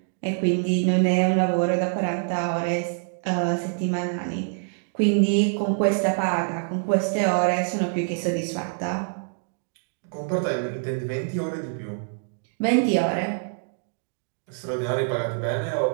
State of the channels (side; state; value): left; silent; digital silence